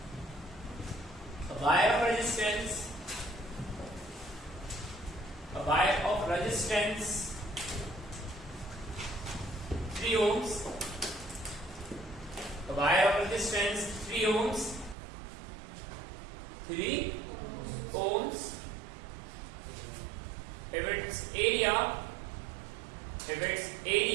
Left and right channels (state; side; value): drops out; left; at 15.0 s